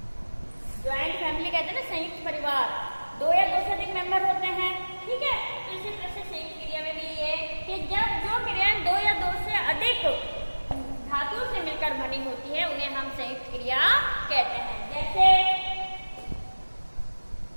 ज्वाइंट फैमिली कहते हैं ना, संयुक्त परिवार, दो या दो से अधिक मेंबर होते हैं। ठीक है। तो इसी तरह से संयुक्त क्रिया में भी ये कि जब जो क्रियाएं दो या दो से अधिक धातुओं से मिलकर बनी होती है उन्हें हम संयुक्त क्रिया कहते हैं।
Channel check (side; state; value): both; inverted; correlation -1.00